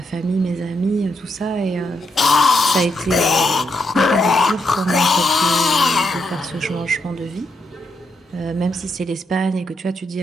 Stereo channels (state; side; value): normal; both; correlation 0.80